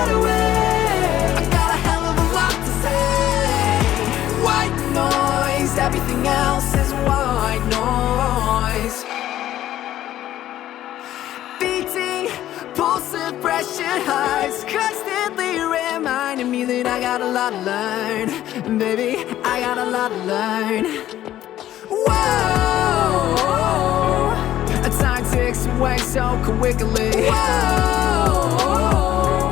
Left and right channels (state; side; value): quieter; right; 13.0 dB